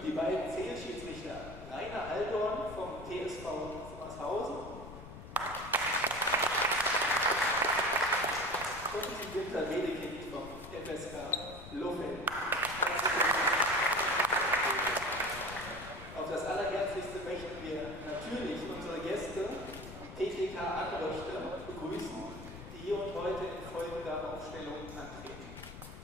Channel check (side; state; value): left; noise; rumble, 13 dB below the sound